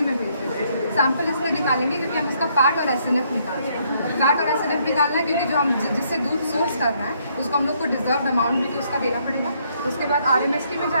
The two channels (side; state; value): both; inverted; correlation -0.70